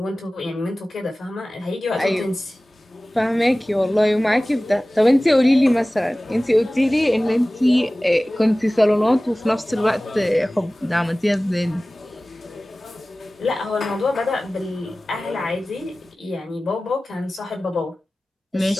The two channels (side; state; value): both; normal; correlation 0.97